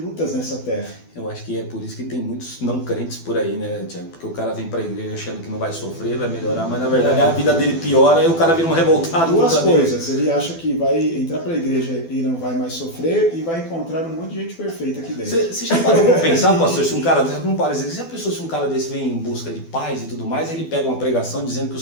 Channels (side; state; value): right; late; 12 ms